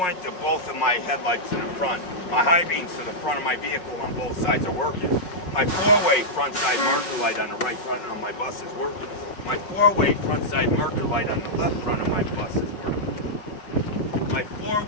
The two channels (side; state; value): right; late; 5.4 ms